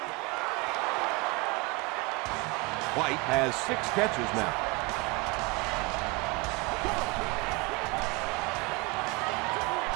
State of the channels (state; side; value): quieter; left; 26.2 dB